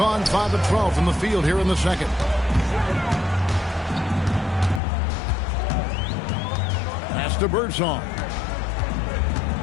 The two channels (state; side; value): drops out; right; at 4.8 s